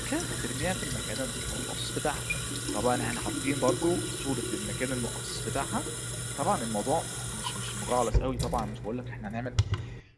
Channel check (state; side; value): identical; both; correlation 1.00